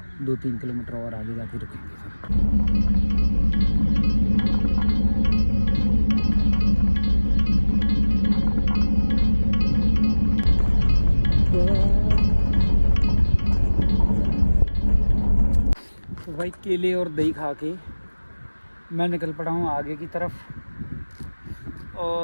2-3 किलोमीटर और आगे जाके रुकेंगे फिर। तो भाई केले और दही खा के मैं निकल पड़ा हूँ आगे की तरफ।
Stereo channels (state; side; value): inverted; both; correlation -1.00